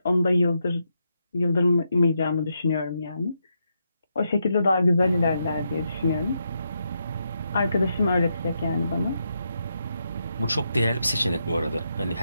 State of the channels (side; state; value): both; inverted; correlation -0.82